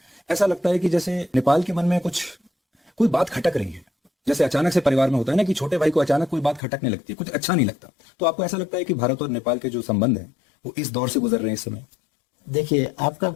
ऐसा लगता है कि जैसे नेपाल के मन में कोई बात खटक रही है। जैसे अचानक से परिवार में होता है ना कि छोटे भाई को अचानक कोई बात खटकने लगती है, कुछ अच्छा नहीं लगता। तो आपको ऐसा लगता है कि भारत और नेपाल के जो संबंध हैं वो इस दौर से गुजर रहे हैं इस समय? देखिए, आपका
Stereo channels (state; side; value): drops out; right; at 6.6 s